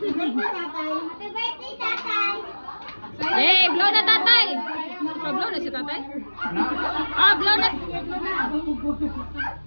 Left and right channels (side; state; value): both; inverted; correlation -1.00